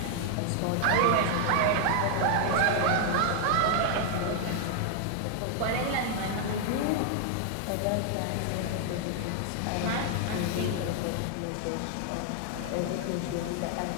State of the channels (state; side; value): different; both; correlation 0.00